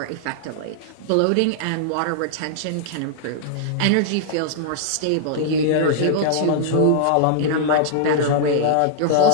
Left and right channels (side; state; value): both; different; correlation -0.01